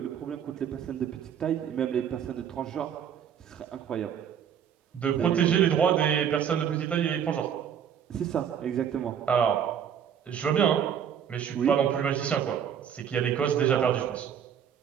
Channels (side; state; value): left; quieter; 8.5 dB